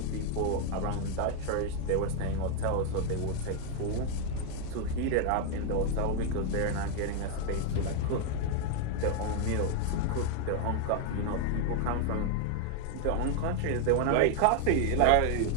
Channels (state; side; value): different; both; correlation 0.00